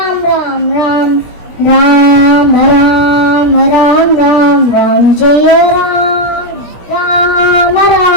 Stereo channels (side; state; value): right; late; 17 ms